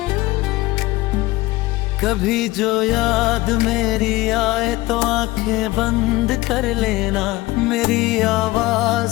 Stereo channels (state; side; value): quieter; right; 19.3 dB